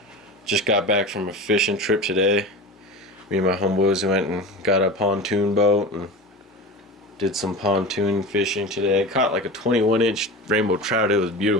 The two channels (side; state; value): both; normal; correlation 0.30